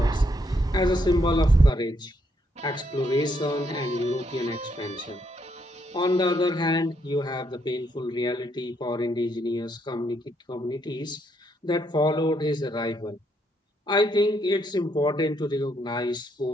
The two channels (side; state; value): both; normal; correlation 0.74